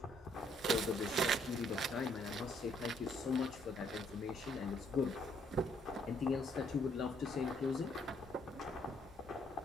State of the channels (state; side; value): normal; both; correlation 0.68